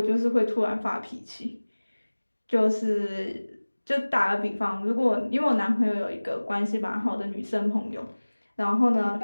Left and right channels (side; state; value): both; inverted; correlation -1.00